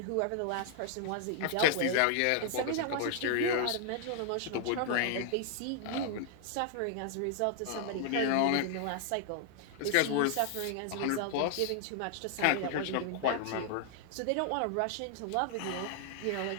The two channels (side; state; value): both; different; correlation 0.00